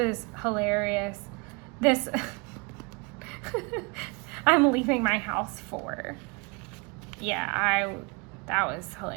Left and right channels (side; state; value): left; quieter; 30.3 dB